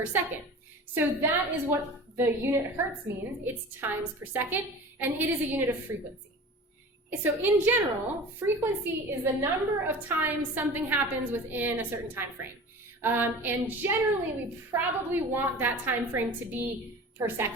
second. So that is what the unit hertz means. It's times per second, and it is a unit of frequency. So in general, frequency is the number of times something happens within a certain time frame. And generally, we probably want that time frame to be per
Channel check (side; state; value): both; normal; correlation 0.37